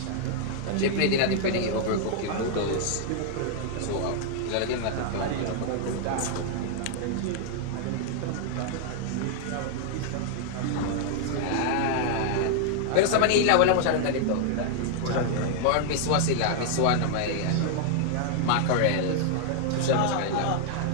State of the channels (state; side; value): different; both; correlation -0.01